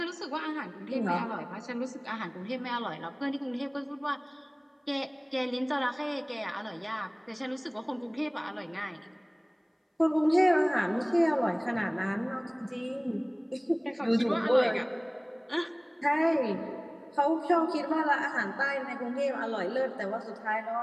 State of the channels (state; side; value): identical; both; correlation 1.00